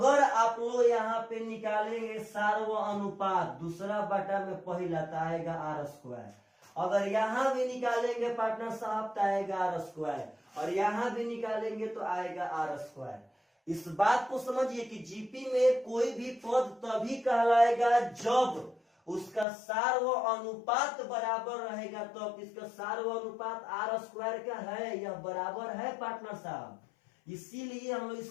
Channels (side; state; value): right; drops out; at 19.5 s